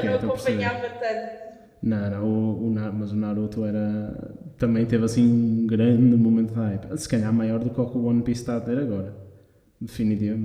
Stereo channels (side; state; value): both; identical; correlation 1.00